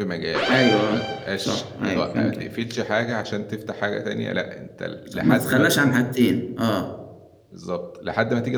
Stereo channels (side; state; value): both; identical; correlation 1.00